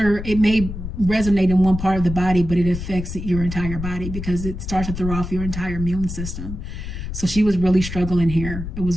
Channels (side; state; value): left; noise; rumble, 7 dB below the sound